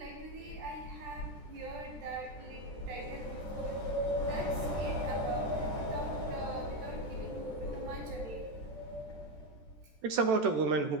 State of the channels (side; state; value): left; late; 14 ms